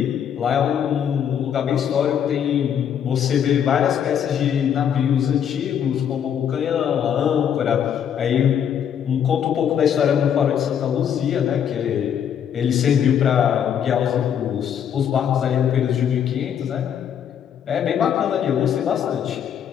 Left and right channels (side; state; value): right; quieter; 8.8 dB